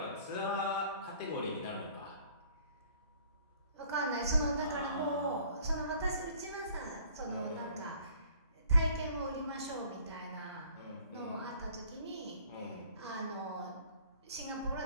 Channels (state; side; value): inverted; both; correlation -0.55